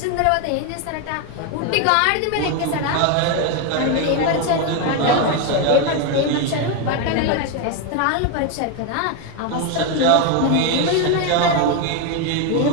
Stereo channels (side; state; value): both; different; correlation 0.01